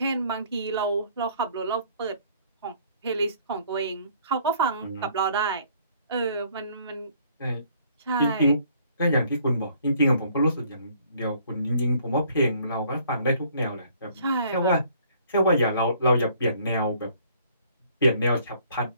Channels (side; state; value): both; inverted; correlation -0.60